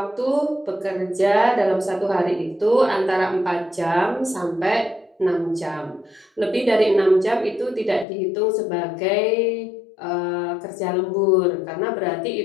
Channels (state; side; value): drops out; right; at 8.1 s